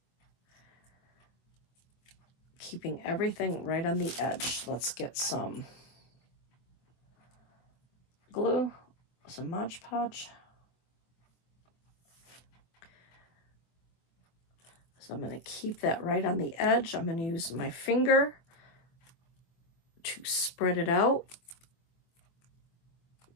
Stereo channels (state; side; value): late; right; 24 ms